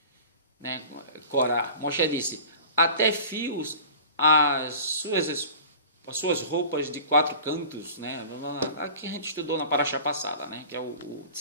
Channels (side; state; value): both; inverted; correlation -0.41